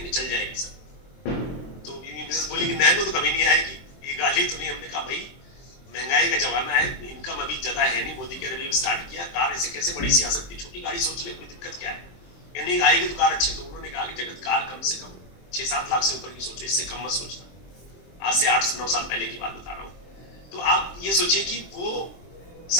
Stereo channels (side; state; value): right; late; 23 ms